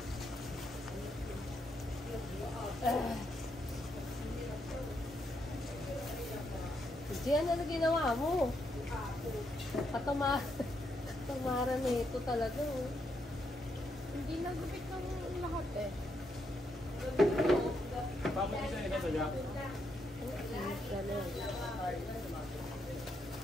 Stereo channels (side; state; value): both; normal; correlation 0.79